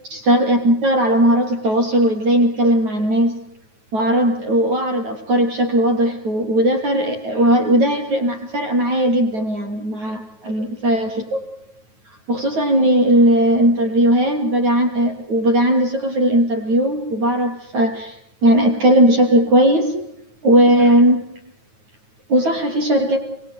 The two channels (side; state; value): left; late; 9.3 ms